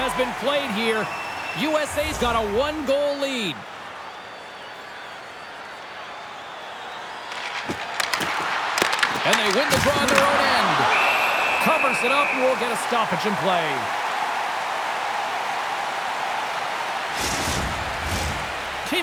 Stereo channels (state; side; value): identical; both; correlation 1.00